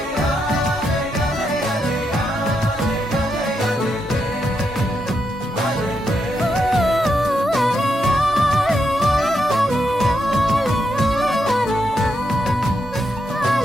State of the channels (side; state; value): both; normal; correlation 0.82